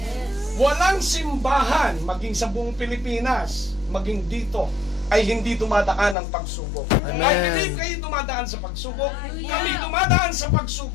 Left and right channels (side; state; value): right; drops out; at 6.2 s